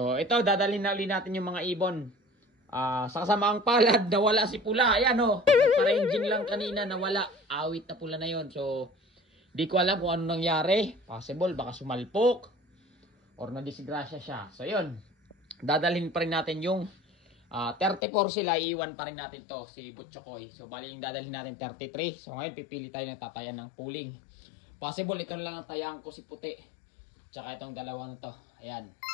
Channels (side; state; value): right; drops out; at 18.0 s